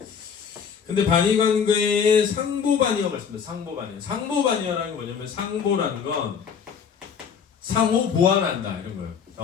근데 반의 관계에 상보 반의어가 있습니다. 상보 반의어. 상보 반의어라는 게 뭐냐면 상보라는 건 상호 보완한다 이런 거예요.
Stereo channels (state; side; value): quieter; right; 6.9 dB